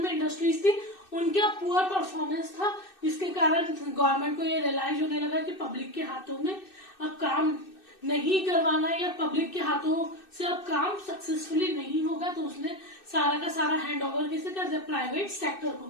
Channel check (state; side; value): late; right; 2.6 ms